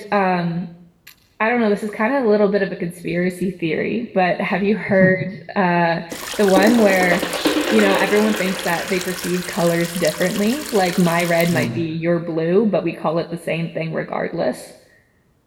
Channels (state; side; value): identical; both; correlation 1.00